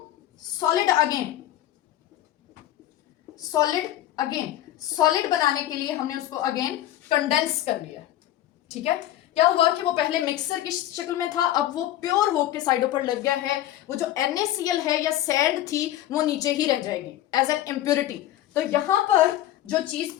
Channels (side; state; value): right; quieter; 13.4 dB